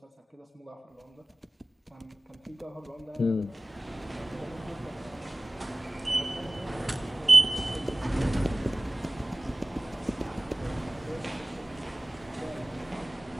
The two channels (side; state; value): both; normal; correlation 0.97